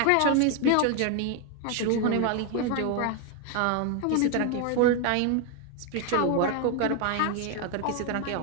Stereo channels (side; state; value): both; different; correlation 0.01